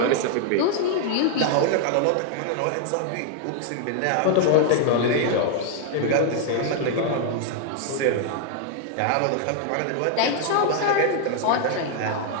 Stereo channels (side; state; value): both; different; correlation 0.00